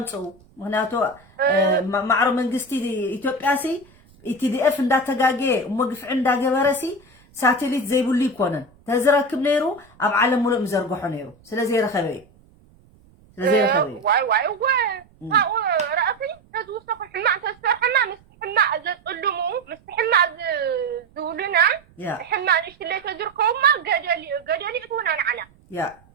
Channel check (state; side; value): noise; right; rumble, 29 dB below the sound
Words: تصو هناك معرو من قستي إثيوبياسي ኢቲዲኤፍ እንዳተጋገ ወግፍ እንዳገበረሲ ሳተሊት ዘይብሉ ይኮነን ተዝረክብ ነይሩ ኣብ ዓለም ሙሉእ ምዘርግሖ ነይሩ ስለዚ ረኸበ ዋይ ረአፊ ተዝውስተኹ ሕማቅ ተሰርሐና ምስትሕማቅ ዘጥልሙ ምስትሕማቅ ዝውሉና ሕማቅ ንሽትለይ ተዝርከቡማ ገደሊ እትውና ንዓና